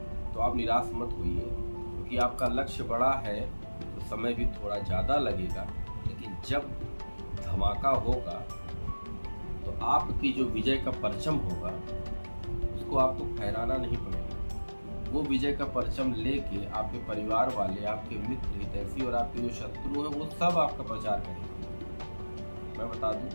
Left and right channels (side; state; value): both; inverted; correlation -1.00